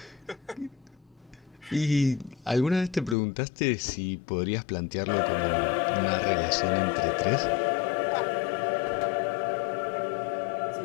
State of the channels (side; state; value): right; drops out; at 3.2 s